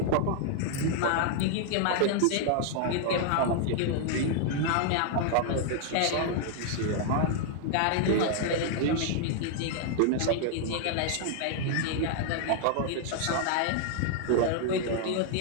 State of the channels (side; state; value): both; different; correlation 0.00